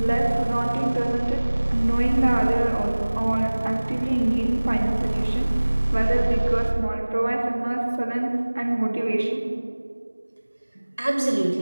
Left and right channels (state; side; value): inverted; both; correlation -1.00